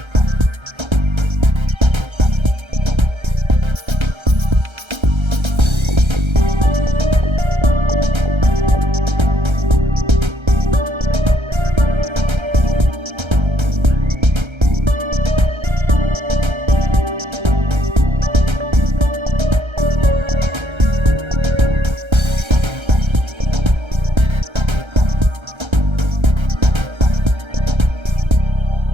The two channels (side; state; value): left; late; 1.3 ms